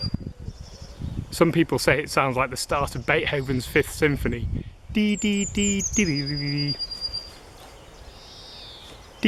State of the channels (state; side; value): identical; both; correlation 1.00